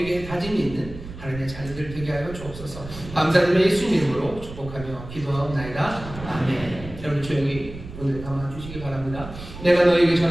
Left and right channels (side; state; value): right; noise; rumble, 13 dB below the sound